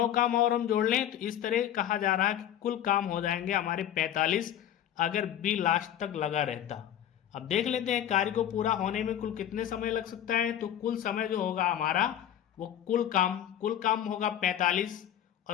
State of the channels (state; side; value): quieter; right; 10.7 dB